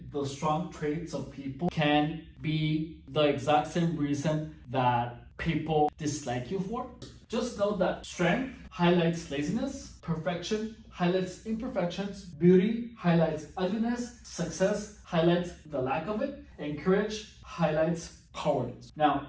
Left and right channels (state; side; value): identical; both; correlation 1.00